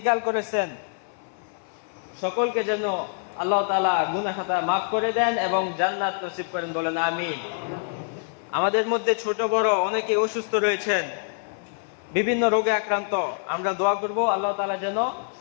করেছেন, সকলকে যেন আল্লাহ তাআলা গুনাহ খাতা মাফ করে দেন এবং জান্নাত নসিব করেন, বলেন আমিন। আমাদের মধ্যে ছোট বড় অনেকে অসুস্থ রয়েছেন, বিভিন্ন রোগে আক্রান্ত, আমরা দোয়া করব আল্লাহ তাআলা যেন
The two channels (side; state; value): right; silent; 58 dB below the other